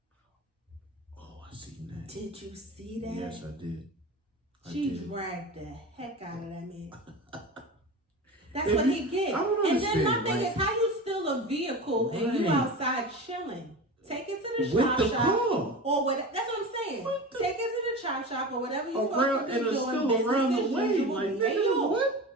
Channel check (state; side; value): normal; both; correlation 0.30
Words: Oh, I seen that. Did you see that? Yes, I did. She dragged the heck out of that man. That's what he get. And then my thing is, how you steal a vehicle and you outside chilling? Take it to the chop shop or whatever. That's what I'm saying. Take it to the chop shop or whatever you're supposed to be doing. Business around as the way. usual. Like, Hey, yo.